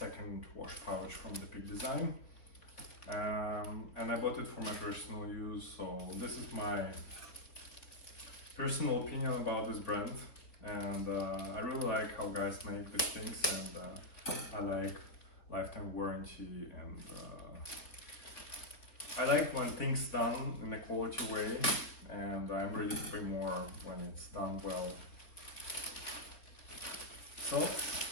wash pouch from the Peak Design. And I bought it for my personal use, so this is my personal opinion about this brand. And I really like how guys make these things, and I like lifetime warranty, and I like when things done in a quality way, and I'm ready to pay more when it's done well. So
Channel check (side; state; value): right; late; 3.9 ms